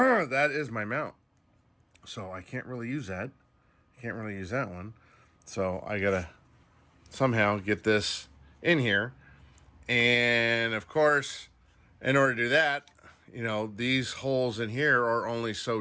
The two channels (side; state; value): both; identical; correlation 1.00